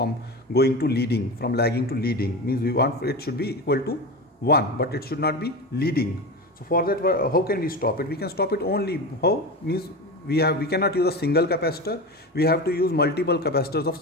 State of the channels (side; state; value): both; normal; correlation 0.24